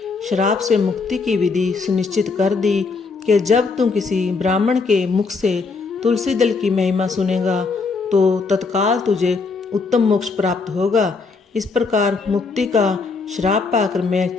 श्राप से मुक्ति की विधि सुनिश्चित कर दी कि जब तुम किसी ब्राह्मण के मुख से तुलसी दल की महिमा सुनेगा तो तत्काल तुझे उत्तम मोक्ष प्राप्त होगा। इस प्रकार मुक्ति का श्राप पाकर मैं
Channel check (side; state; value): right; quieter; 4.4 dB